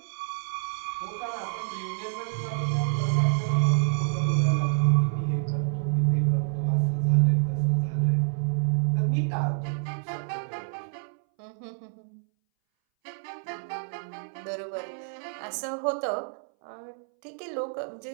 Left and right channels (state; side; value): silent; left; 59 dB below the other